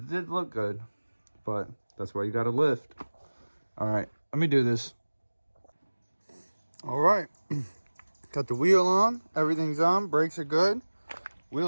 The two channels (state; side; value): inverted; both; correlation -1.00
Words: look good. But that's why you gotta lift. All right, let me do this. All right, got the wheel on, everything's on, brakes are good.